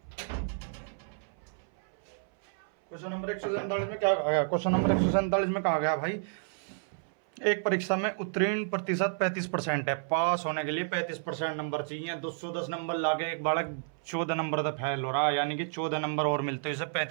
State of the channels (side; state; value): left; silent; 57 dB below the other